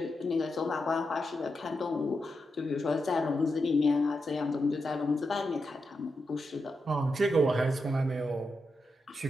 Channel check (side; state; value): both; normal; correlation 0.86